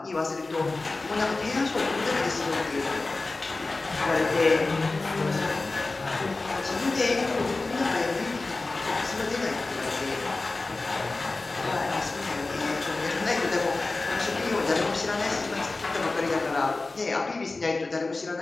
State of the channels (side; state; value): right; quieter; 3.4 dB